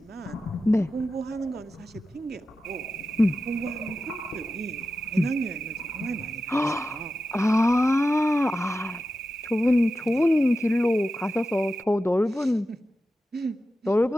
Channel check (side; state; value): both; normal; correlation 0.92